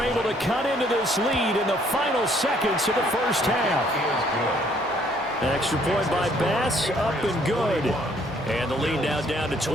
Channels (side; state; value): both; normal; correlation 0.64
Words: able to cut into this lead in the final seconds of the first half. Extra point by Bass, up and good. And the lead now down to